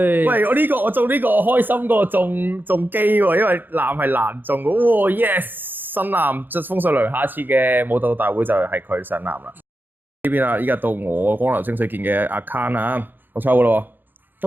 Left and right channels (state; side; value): late; left; 0.091 ms